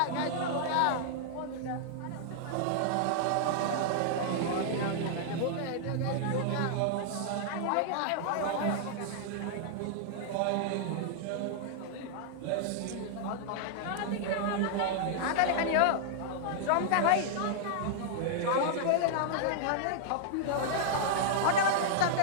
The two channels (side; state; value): both; different; correlation -0.01